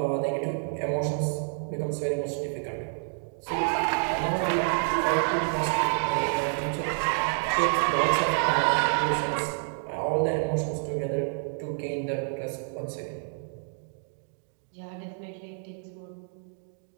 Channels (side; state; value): left; silent; 59 dB below the other